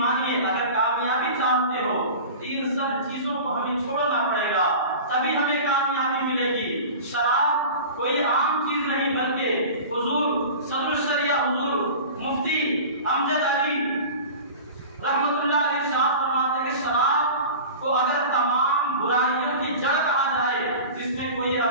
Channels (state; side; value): inverted; both; correlation -0.36